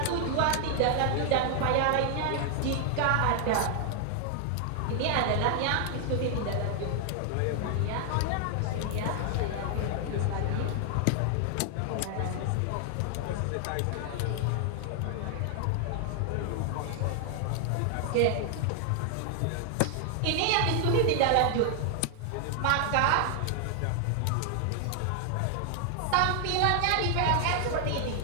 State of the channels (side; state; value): both; different; correlation 0.00